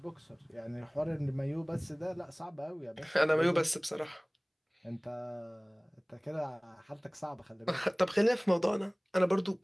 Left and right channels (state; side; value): identical; both; correlation 1.00